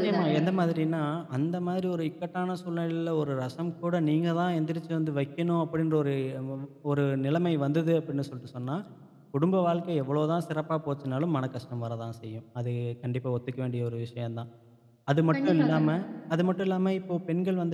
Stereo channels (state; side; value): identical; both; correlation 1.00